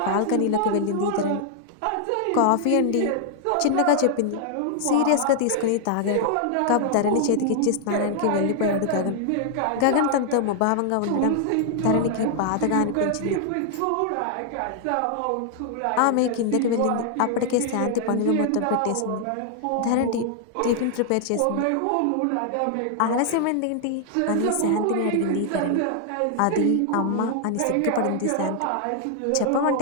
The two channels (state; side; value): different; both; correlation 0.00